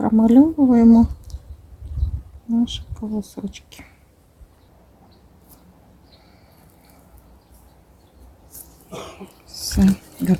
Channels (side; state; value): both; identical; correlation 1.00